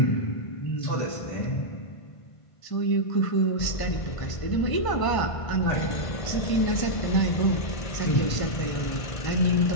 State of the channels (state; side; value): late; right; 1.5 ms